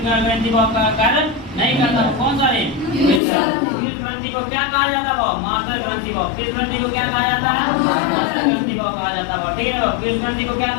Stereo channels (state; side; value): drops out; right; at 3.2 s